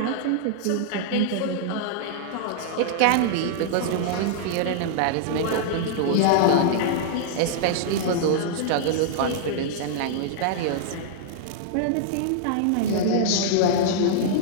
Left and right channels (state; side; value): different; both; correlation -0.01